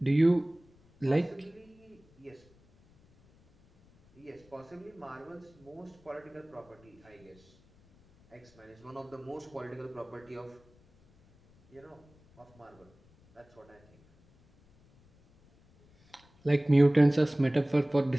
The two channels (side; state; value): left; noise; rumble, 29 dB below the sound